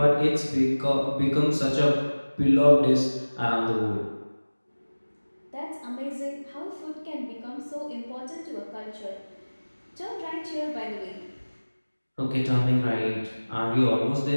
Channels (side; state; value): both; inverted; correlation -1.00